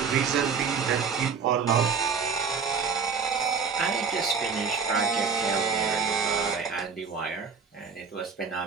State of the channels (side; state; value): left; quieter; 5.7 dB